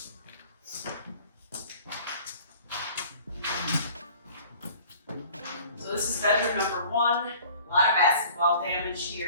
So this is bedroom number 1. A lot of basketball damage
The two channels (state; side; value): inverted; both; correlation -0.49